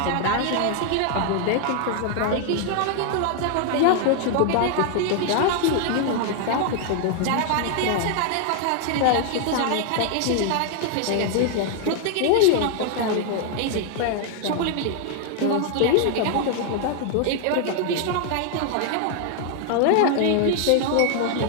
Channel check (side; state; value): both; different; correlation 0.00